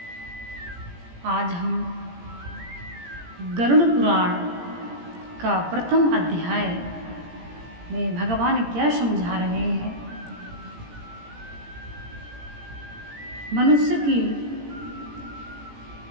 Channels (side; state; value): left; late; 17 ms